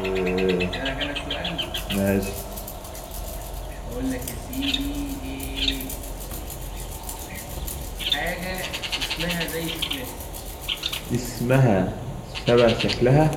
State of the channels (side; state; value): both; identical; correlation 1.00